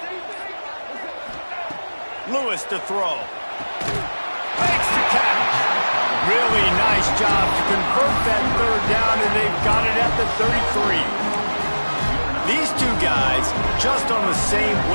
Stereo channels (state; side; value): inverted; both; correlation -1.00